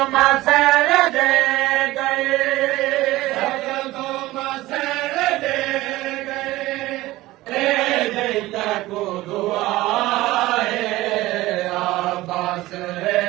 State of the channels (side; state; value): left; quieter; 17.8 dB